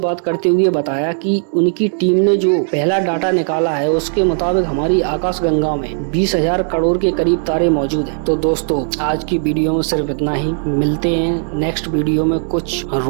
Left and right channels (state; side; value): silent; left; digital silence